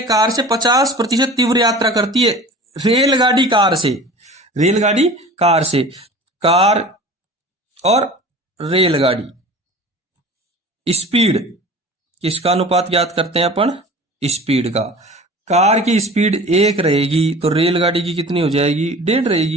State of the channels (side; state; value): both; normal; correlation 0.40